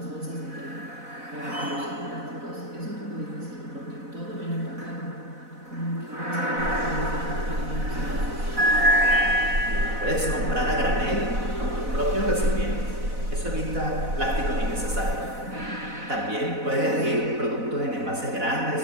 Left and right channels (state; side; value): late; left; 4.0 ms